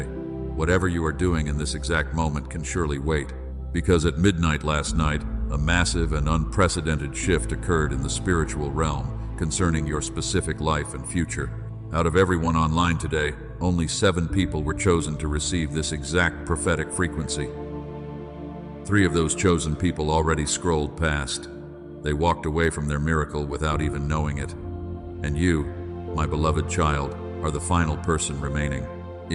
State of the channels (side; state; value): both; identical; correlation 1.00